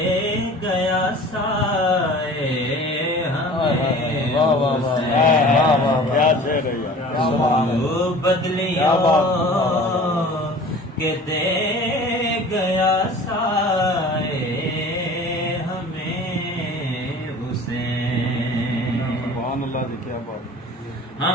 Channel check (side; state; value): both; normal; correlation 0.43